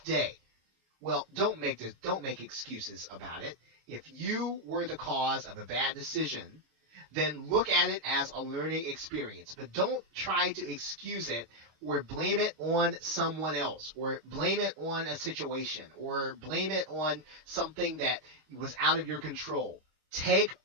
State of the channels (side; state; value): left; late; 26 ms